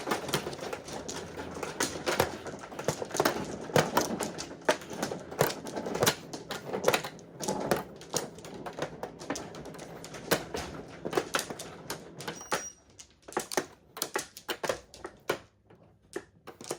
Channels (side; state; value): both; identical; correlation 1.00